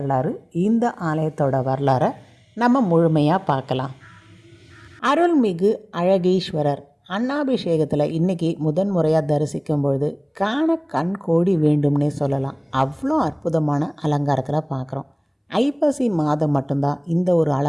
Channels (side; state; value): both; identical; correlation 1.00